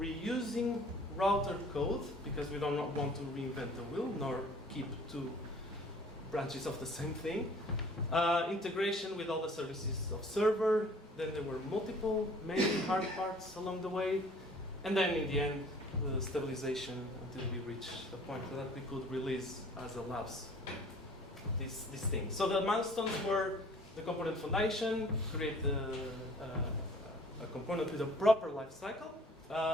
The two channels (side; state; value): both; normal; correlation 0.52